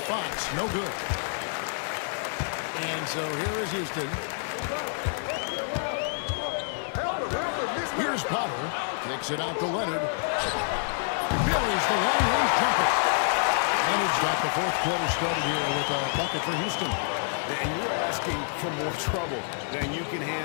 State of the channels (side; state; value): right; silent; digital silence